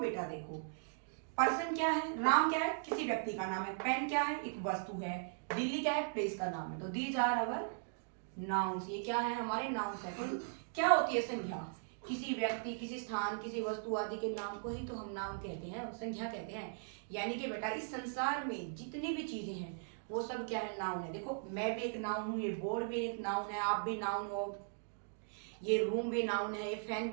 देखो पर्सन क्या है? राम क्या है? किसी व्यक्ति का नाम है। पेन क्या है? एक वस्तु है। दिल्ली क्या है? प्लेस का नाम है। तो दीज आर आवर नाउन्स। ये क्या है? हमारे नाउन्स है। तो क्या होती है संज्ञा? किसी व्यक्ति, किसी स्थान, किसी वस्तु आदि के नाम को ही तो हम नाउन कहते हैं, संज्ञा कहते हैं। यानी कि बेटा इस संसार में जितनी भी चीजें हैं वो सब क्या है? नाउन है। देखो मैं भी एक नाउन हूँ, ये बोर्ड भी एक नाउन है, आप भी नाउन हो, ये रूम भी नाउन है, ये फैन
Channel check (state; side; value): silent; left; digital silence